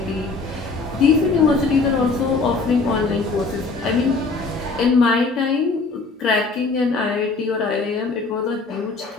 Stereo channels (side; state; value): right; quieter; 3.9 dB